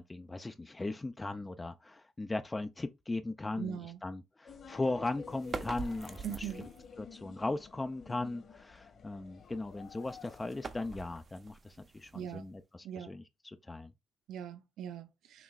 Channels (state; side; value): normal; both; correlation 0.91